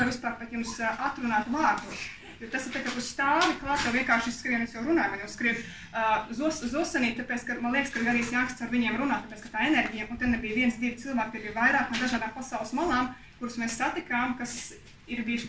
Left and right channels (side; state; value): both; identical; correlation 1.00